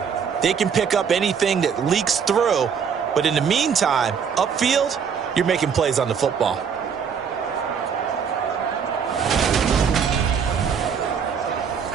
They can pick up anything that leaks through. But in the meantime, upfield, you're making plays on the football.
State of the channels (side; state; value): left; quieter; 6.9 dB